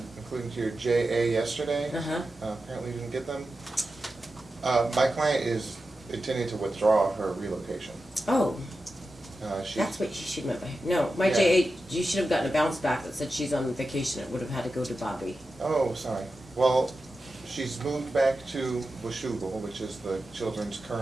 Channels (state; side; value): normal; both; correlation 0.91